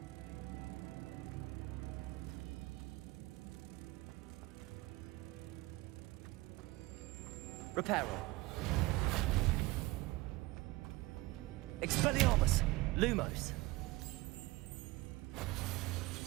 Reparo. Expelliarmus. Lumos.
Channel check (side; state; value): left; quieter; 20.8 dB